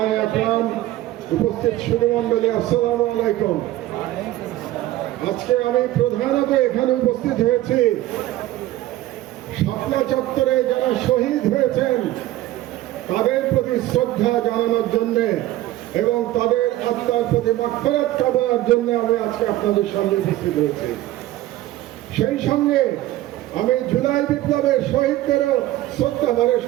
আকরাম, উপস্থিত সুধীমণ্ডলী, আসসালামু আলাইকুম। আজকে আমি প্রধানত এখানে উপস্থিত হয়েছি শাপলা চত্বরে যারা শহীদ হয়েছেন তাদের প্রতি শ্রদ্ধা জানানোর জন্যে এবং তাদের আত্মার প্রতি মাগফিরাত কামনার জন্য আমি আজকে আপনাদের সামনে উপস্থিত হয়েছি। সেই সঙ্গে আমি জুলাই বিপ্লবের শহীদদেরও শ্রদ্ধা ভরে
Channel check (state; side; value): quieter; left; 15.4 dB